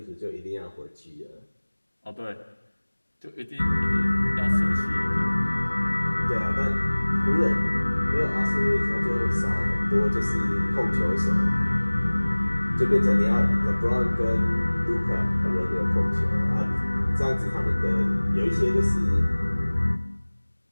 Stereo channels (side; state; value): both; inverted; correlation -1.00